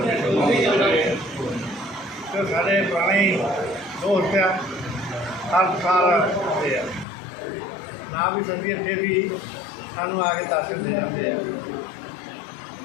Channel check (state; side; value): drops out; right; at 7.1 s